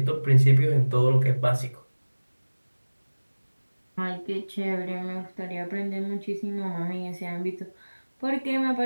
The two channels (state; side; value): inverted; both; correlation -1.00